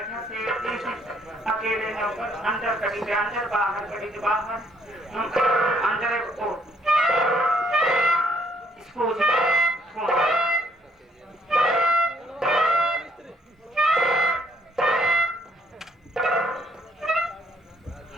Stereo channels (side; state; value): both; normal; correlation 0.67